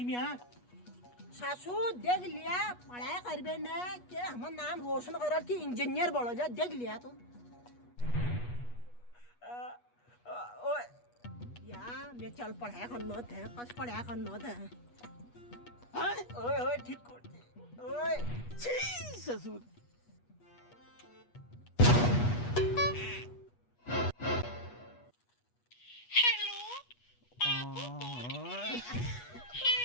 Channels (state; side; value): late; right; 8.3 ms